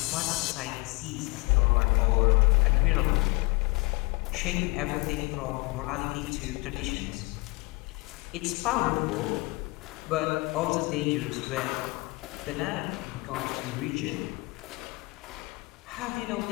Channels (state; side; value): quieter; right; 25.9 dB